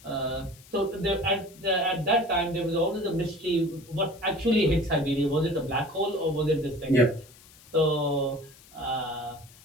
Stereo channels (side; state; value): left; noise; hiss, 24 dB below the sound